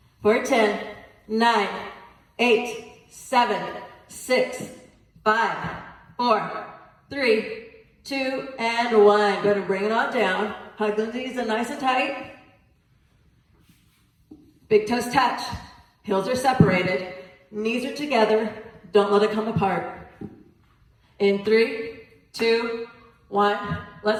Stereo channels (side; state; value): both; identical; correlation 1.00